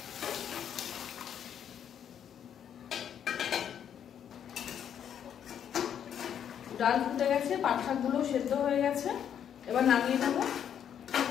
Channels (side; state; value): right; quieter; 9.0 dB